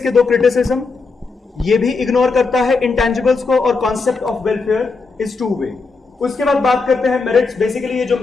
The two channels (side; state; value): right; quieter; 4.3 dB